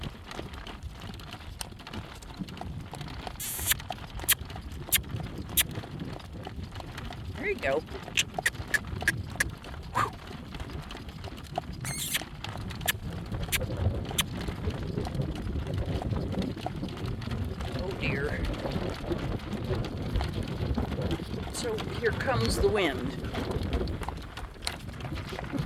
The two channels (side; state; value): both; identical; correlation 1.00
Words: There you go. Oh dear. So here comes the wind.